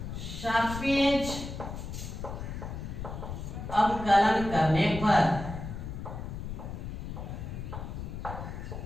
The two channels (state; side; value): noise; left; rumble, 7 dB below the sound